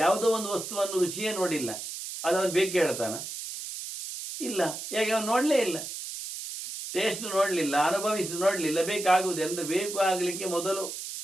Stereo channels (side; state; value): right; noise; hiss, 8 dB below the sound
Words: ಒಂದು ವಸ್ತುವನ್ನು ರುಚಿಯೇ ನೋಡಿಲ್ಲ, ಅದು ಅವನು ಬೇಕು ಹೇಳ್ತಾನ? ಇಲ್ಲ. ಯಾಕೆ? ಅವನು ನೋಡಲೇ ಇಲ್ಲ, ಟೇಸ್ಟ್ ನೋಡಲಿಲ್ಲ, ಅನುಭವಿಸಿ ನೋಡಲಿಲ್ಲ. ಬೇಕಾಗುವುದು ಅಂದರೆ ಬೇಕು ಆಗಲಿಕ್ಕೆ ಮೊದಲು